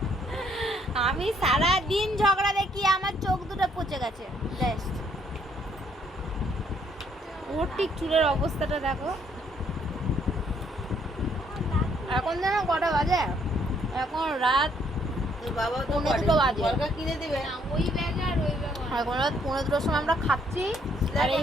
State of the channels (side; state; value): both; normal; correlation 0.68